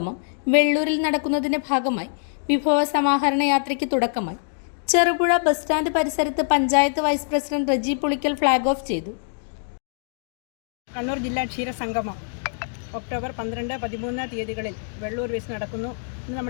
വെള്ളൂരിൽ നടക്കുന്നതിന്റെ ഭാഗമായി വിഭവ സമാഹരണ യാത്രയ്ക്ക് തുടക്കമായി. ചെറുപുഴ ബസ് സ്റ്റാൻഡ് പരിസരത്ത് panchayat vice president Reji Pulikkal flag off ചെയ്തു. കണ്ണൂർ ജില്ലാ ക്ഷീരസംഗമം ഒക്ടോബർ 12, 13 തീയതികളിൽ വെള്ളൂർ വെച്ച് നടക്കുന്നു എന്ന്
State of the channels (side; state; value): right; silent; digital silence